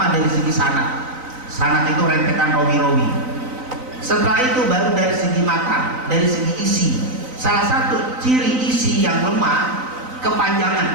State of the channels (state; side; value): late; left; 3.9 ms